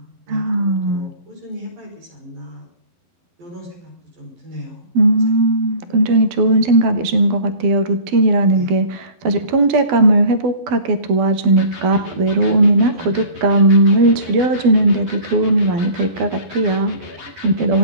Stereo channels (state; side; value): late; left; 12 ms